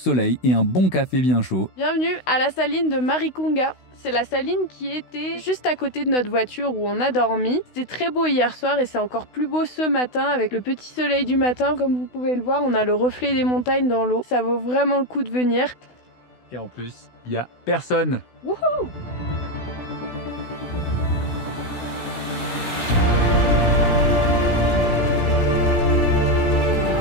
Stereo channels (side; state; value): right; late; 16 ms